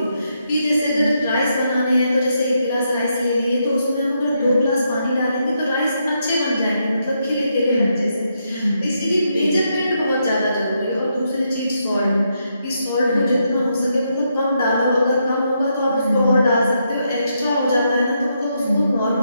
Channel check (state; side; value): inverted; both; correlation -0.80